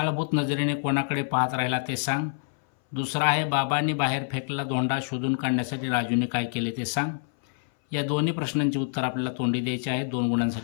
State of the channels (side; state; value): right; silent; 59 dB below the other